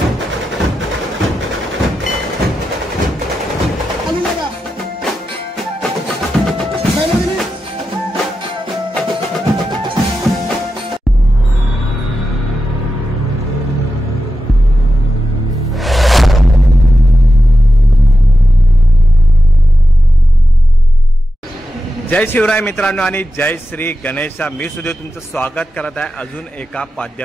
जय शिवराय मित्रांनो आणि जय श्री गणेशा। मी सुद्धा तुमचं स्वागत करत आहे अजून एका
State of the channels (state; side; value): normal; both; correlation 0.91